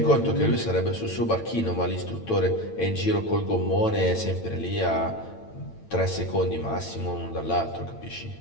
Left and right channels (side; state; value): right; late; 8.9 ms